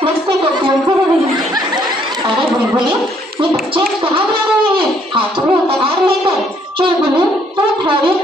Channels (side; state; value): both; normal; correlation 0.67